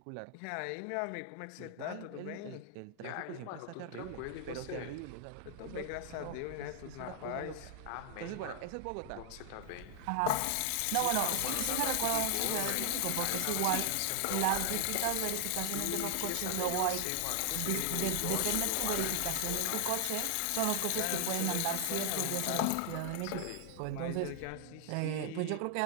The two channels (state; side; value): different; both; correlation 0.00